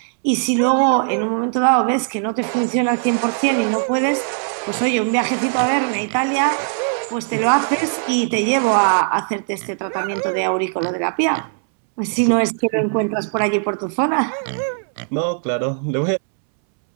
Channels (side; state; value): left; silent; 66 dB below the other